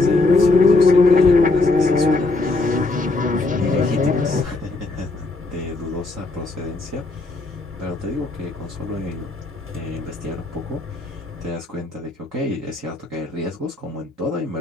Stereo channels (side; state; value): right; quieter; 3.2 dB